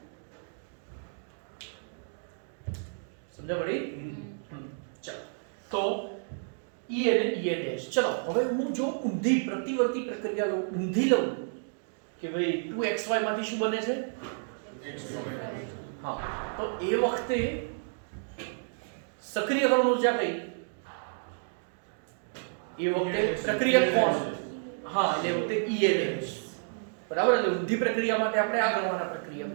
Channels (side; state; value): left; silent; digital silence